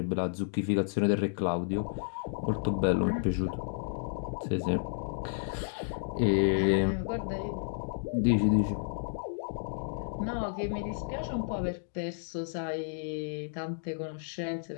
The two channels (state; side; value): silent; right; digital silence